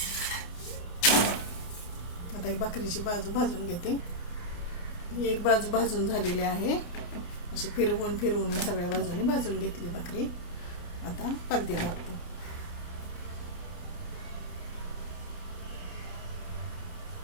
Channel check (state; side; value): late; right; 29 ms